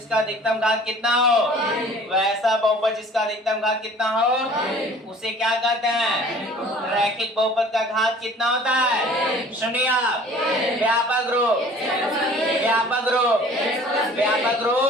अधिकतम घात कितना हो, वैसा बहुपद जिसका अधिकतम घात कितना हो उसे क्या कहते हैं? रैखिक बहुपद का घात कितना होता है? शून्यक, व्यापक रूप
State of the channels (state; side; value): normal; both; correlation 0.49